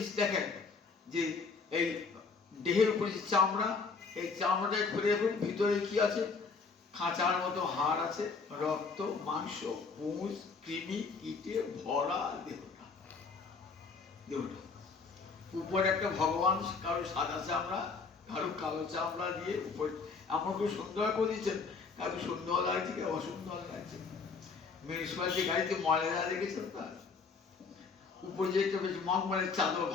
দেখেন যে এই দেহের উপরে যে চামড়া, এই চামড়াটা খুলে দেখুন ভিতরে কি আছে, খাঁচার মতো হাড় আছে, রক্ত, মাংস, পুঁজ, কৃমি, কীটে ভরা দেহটা। উপরে একটা ভগবান, কারো সাদা চামড়া, কারো কালো চামড়া দিয়ে উপরে এমন খুব সুন্দর করে দিচ্ছেন, কারো সুন্দর লাগছে, কেউ অসুন্দর লাগছে। মিউনিসিপালিটি গাড়িতে ময়লা দেখেছেন তার উপরে যে একটা বেশ মগমলের চাদর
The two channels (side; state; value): right; quieter; 4.7 dB